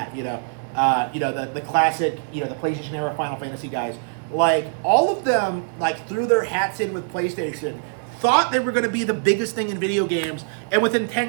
the classic, the PlayStation era Final Fantasy guys, like all of them like threw their hats in with PlayStation, thought they were going to be the biggest thing in video games, and within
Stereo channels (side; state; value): left; silent; digital silence